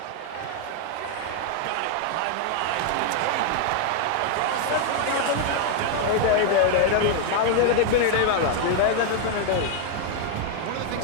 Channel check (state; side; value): different; both; correlation 0.00